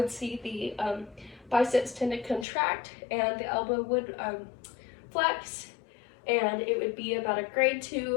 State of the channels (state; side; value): drops out; right; at 2.5 s